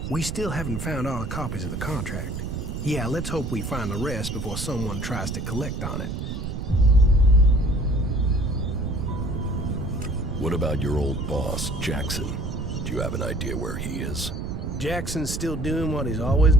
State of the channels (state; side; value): noise; right; rumble, 5 dB below the sound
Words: We still haven't found all the copies of the contract. Yeah, let's hope we find the rest before someone tries to collect on it. What about your old boss, Jackson? Do you have an idea where he is? Jackson's still doing what he's always